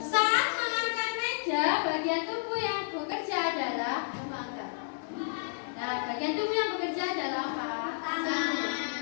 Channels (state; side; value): silent; right; digital silence